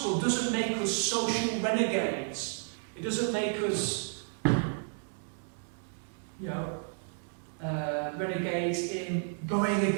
doesn't make us social renegades. It doesn't make us, renegades in going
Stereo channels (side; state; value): left; silent; 57 dB below the other